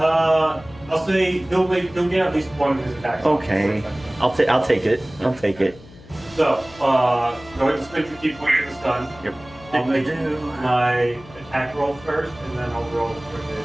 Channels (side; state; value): left; noise; hum, 21 dB below the sound